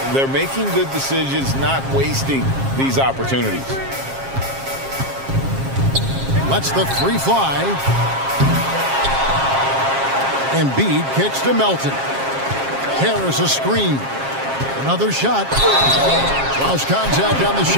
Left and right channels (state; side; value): late; left; 7.4 ms